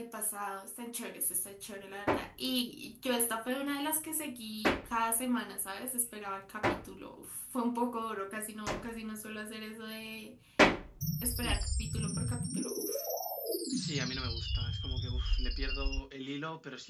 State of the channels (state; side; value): identical; both; correlation 1.00